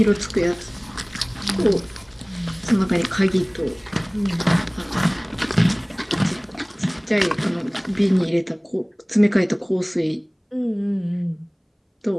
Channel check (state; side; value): identical; both; correlation 1.00